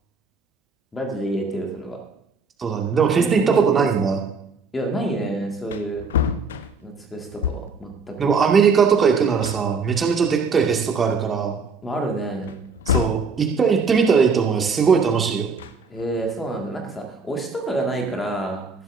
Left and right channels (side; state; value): left; quieter; 4.4 dB